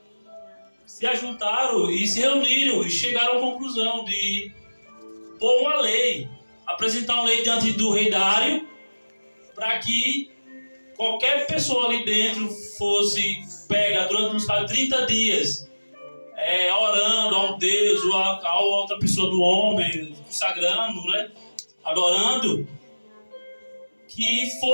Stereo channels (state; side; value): inverted; both; correlation -1.00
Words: se ajuntaram e se reuniram e chegaram à conclusão de pôr uma lei, apresentar uma lei diante do rei Dário, para que qualquer pessoa ali dentro fosse pega durante uns 30 dias, orando a um Deus ou a outra pessoa do homem, consagrando, né, adorando, que